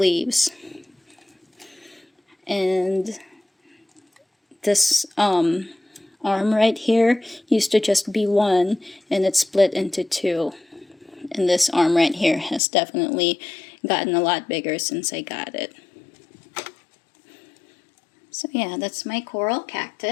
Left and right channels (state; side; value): drops out; right; at 12.6 s